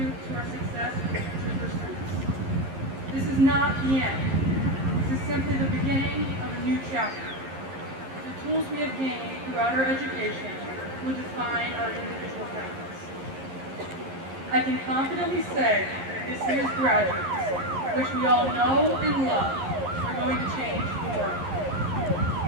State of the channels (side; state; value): left; late; 11 ms